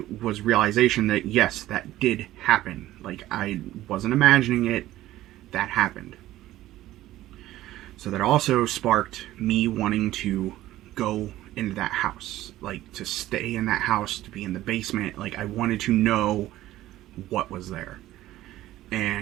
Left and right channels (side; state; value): left; quieter; 15.1 dB